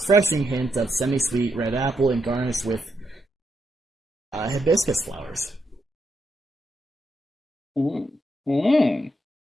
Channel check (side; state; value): both; normal; correlation 0.81